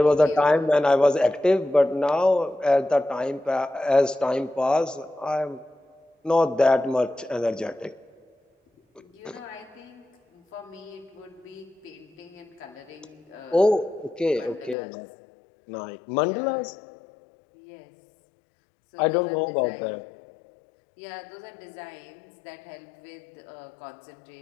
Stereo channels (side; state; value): right; drops out; at 14.8 s